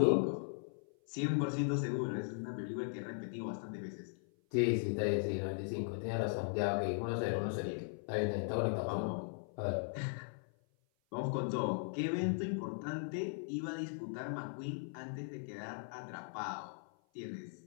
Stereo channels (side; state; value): right; silent; 52 dB below the other